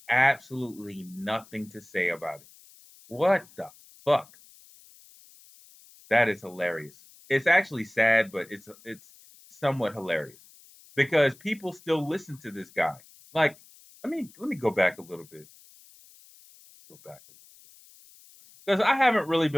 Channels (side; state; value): left; noise; hiss, 25 dB below the sound